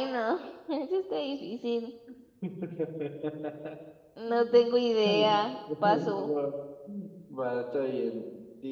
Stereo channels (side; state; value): both; identical; correlation 1.00